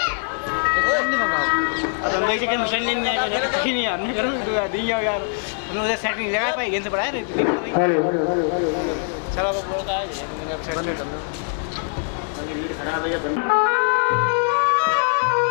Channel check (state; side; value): silent; right; 64 dB below the other